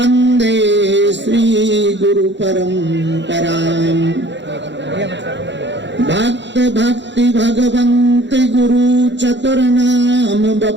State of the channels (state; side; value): late; left; 0.52 ms